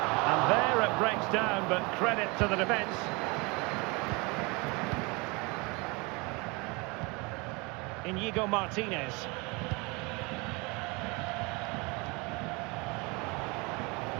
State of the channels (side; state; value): left; quieter; 27.6 dB